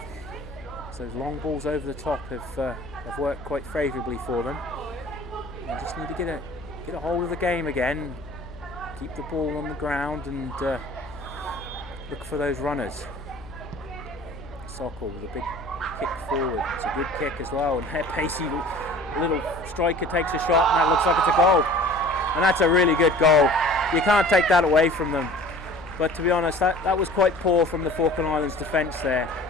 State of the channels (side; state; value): left; noise; hum, 17 dB below the sound